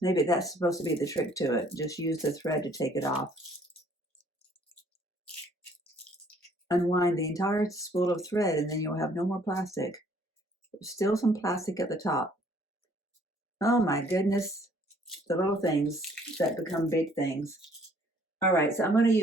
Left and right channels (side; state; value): both; normal; correlation 0.60